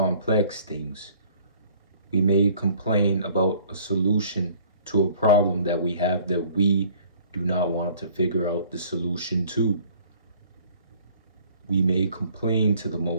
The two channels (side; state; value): both; inverted; correlation -0.55